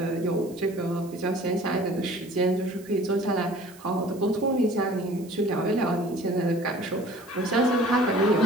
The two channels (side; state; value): right; noise; hiss, 23 dB below the sound